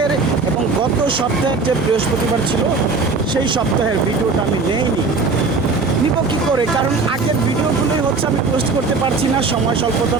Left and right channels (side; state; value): left; quieter; 4.2 dB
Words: এবং গত সপ্তাহের যে বৃহস্পতিবার ছিল সেই সপ্তাহের ভিডিওটা আমি নেইনি। নিব কী করে, কারণ আগের ভিডিওগুলোই হচ্ছে আমি পোস্ট করতে পারছি না সময়